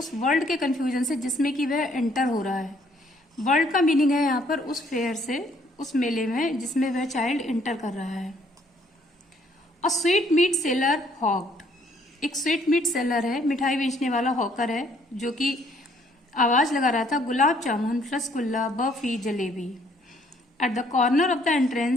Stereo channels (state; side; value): normal; both; correlation 0.64